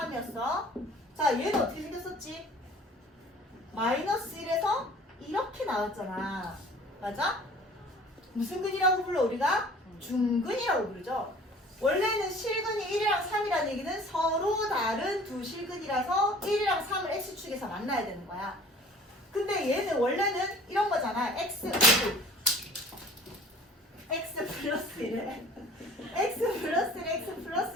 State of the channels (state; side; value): normal; both; correlation 0.49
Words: 자, 얘는 어떻게 생겼었지? 마이너스 1에서 이렇게 나왔잖아. 맞아? 무슨 근이라고 불러 우리가? 중근이라고 부르죠. 원래는 실근이 1이랑 3이라는 얘기는 서로 다른 두 실근이라서 1이랑 3을 x축에서 만나야 되는 거야. 근데 얘는 원래는 이런 거잖아. x 플러스 1에 x 플러스 1, x 플러스